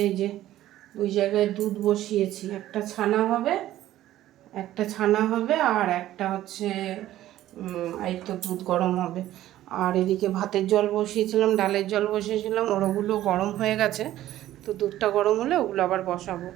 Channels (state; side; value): quieter; left; 13.8 dB